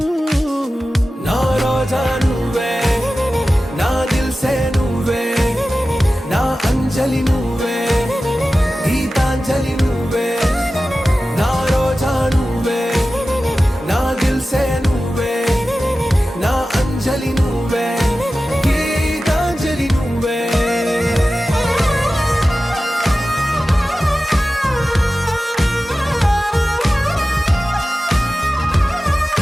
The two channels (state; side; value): normal; both; correlation 0.95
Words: నా రోజా నువ్వే నా దిల్ సే నువ్వే నా అంజలి నువ్వే గీతాంజలి నువ్వే నా రోజా నువ్వే నా దిల్ సే నువ్వే నా అంజలి నువ్వే గీతాంజలి నువ్వే